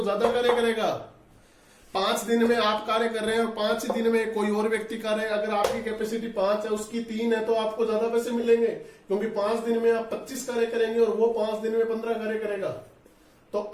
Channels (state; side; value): identical; both; correlation 1.00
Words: ज्यादा कार्य करेगा। 5 दिन में आप कार्य कर रहे हैं और 5 दिन में कोई और व्यक्ति कार्य, अगर आपकी कैपेसिटी 5 है उसकी 3 है तो आपको ज्यादा पैसे मिलेंगे, क्योंकि 5 दिन में आप 25 कार्य करेंगे और वो 5 दिन में 15 कार्य करेगा, तो